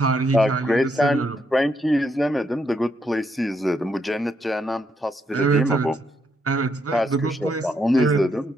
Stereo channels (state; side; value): normal; both; correlation 0.77